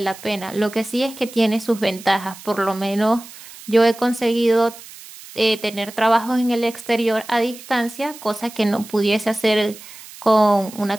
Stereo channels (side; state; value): right; noise; hiss, 17 dB below the sound